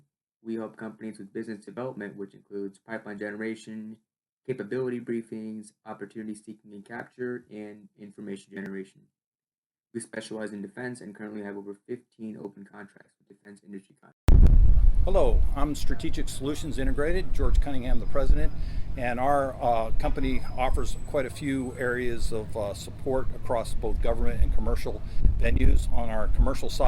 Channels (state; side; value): identical; both; correlation 1.00